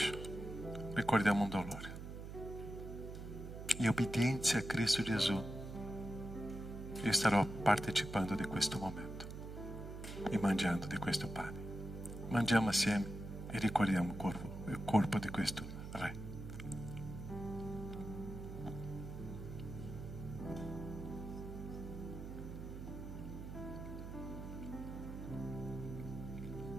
Ricordiamo un dolore. In obbedienza a Cristo Gesù, io starò partecipando di questo momento e mangiando di questo pane. Mangiamo assieme e ricordiamo il corpo di questo Re.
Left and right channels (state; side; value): noise; right; hum, 9 dB below the sound